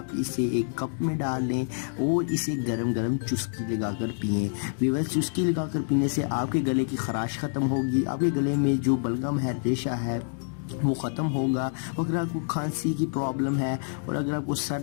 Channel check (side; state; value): right; silent; digital silence